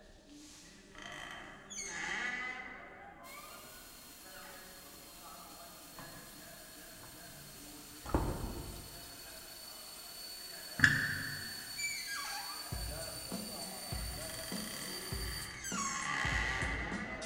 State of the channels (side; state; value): both; identical; correlation 1.00